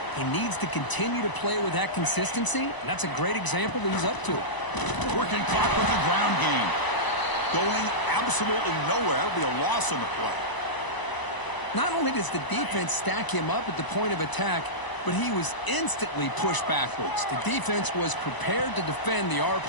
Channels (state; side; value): late; right; 1.0 ms